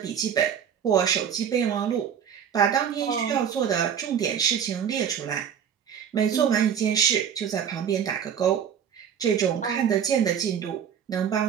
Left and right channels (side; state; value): left; quieter; 8.2 dB